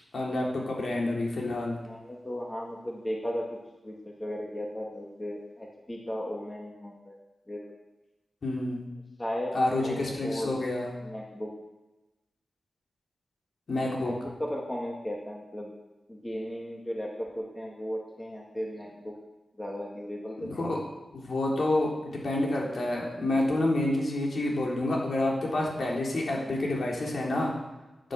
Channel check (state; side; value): normal; both; correlation 0.91